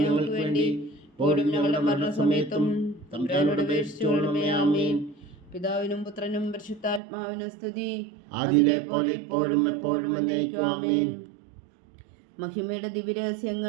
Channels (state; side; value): drops out; left; at 7.0 s